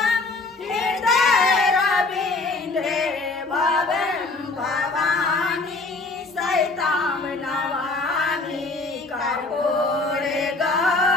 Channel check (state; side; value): quieter; right; 3.4 dB